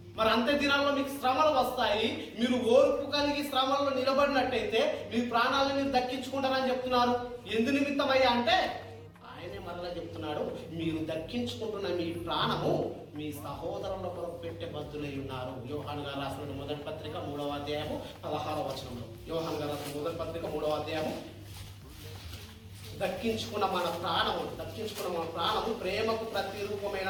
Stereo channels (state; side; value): identical; both; correlation 1.00